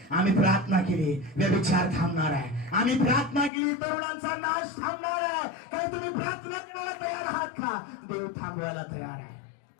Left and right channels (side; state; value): right; drops out; at 3.5 s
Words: आम्ही प्रार्थना केली, व्यभिचार थांबणार आहे. आम्ही प्रार्थना केली, तरुणांचा नाश थांबणार आहे. काय तुम्ही प्रार्थना करायला तयार आहात का? देव थांबवायला तयार आहे.